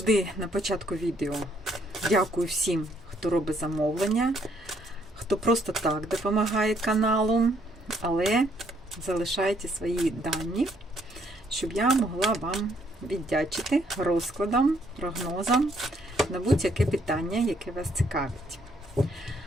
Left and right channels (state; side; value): normal; both; correlation 0.69